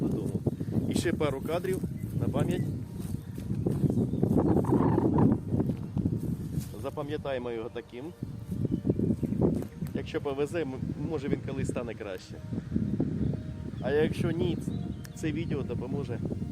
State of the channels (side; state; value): both; identical; correlation 1.00